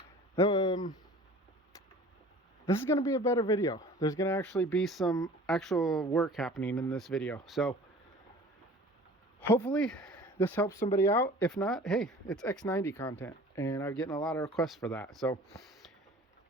This is going to be a better video. There's going to actually be some actual work happening in this video. So hopefully this helps somebody out. If not, hey, it's X90 content and I'm getting a lot of requests for that. So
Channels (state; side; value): normal; both; correlation 0.45